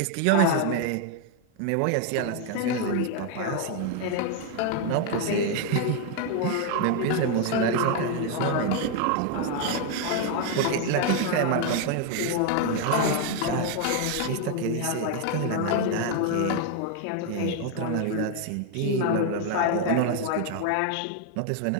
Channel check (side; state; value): both; different; correlation 0.01